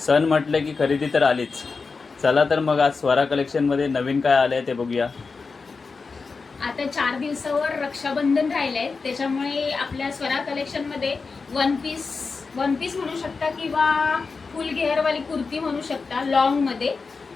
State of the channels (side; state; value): right; quieter; 4.5 dB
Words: म्हटलं की खरेदी तर आलीच. चला तर मग आज स्वरा कलेक्शनमध्ये नवीन काय आलं आहे ते बघूया. आता 4 दिवसावर रक्षाबंधन राहिलंय, त्याच्यामुळे आपल्या स्वरा कलेक्शनमध्ये वन पीस म्हणू शकता किंवा फुल घेअरवाली कुर्ती म्हणू शकता लॉंगमध्ये.